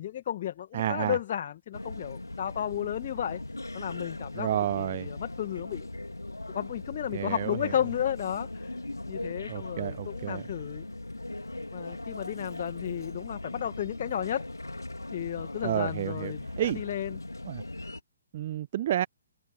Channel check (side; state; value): both; inverted; correlation -0.55